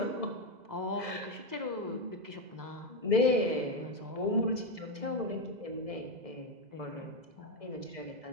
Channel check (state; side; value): late; left; 2.0 ms